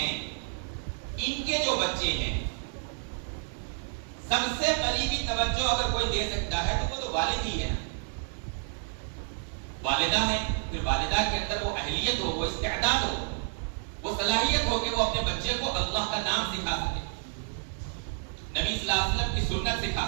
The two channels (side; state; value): left; silent; 58 dB below the other